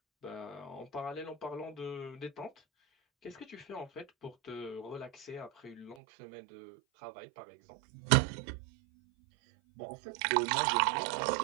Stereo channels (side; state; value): left; drops out; at 6.0 s